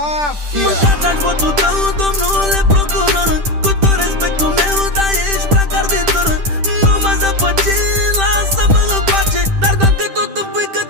Mâncați-aș votul tău, domnule procuror, cu tot respectul meu, dar ești prea carditor. Nu mă zăpăci, lasă-mă în pace, dar dacă tot îmi pui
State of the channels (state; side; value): late; left; 10 ms